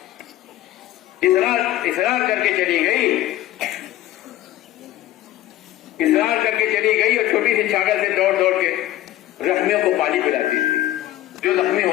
اصرار کر کے چلی گئی, اصرار کر کے چلی گئی اور چھوٹی سی چھاگل سے دوڑ دوڑ کے زخمیوں کو پانی پلاتی تھی. جو زخمی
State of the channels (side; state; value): right; quieter; 14.4 dB